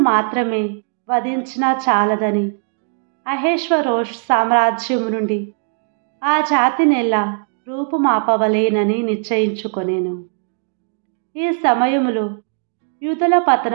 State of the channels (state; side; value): silent; left; 65 dB below the other